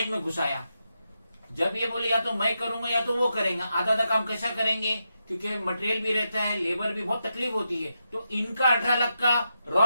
में घुसाया। जब ये बोले या तो मैं करूंगा या तो वो करेंगे, आधा आधा काम कैसा करेंगे, क्योंकि मटेरियल भी रहता है, लेबर भी बहुत तकलीफ होती है। तो इनका 18 लाख का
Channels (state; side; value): inverted; both; correlation -0.85